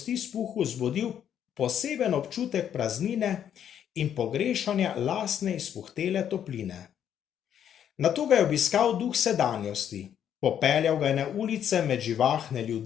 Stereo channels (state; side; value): quieter; right; 9.4 dB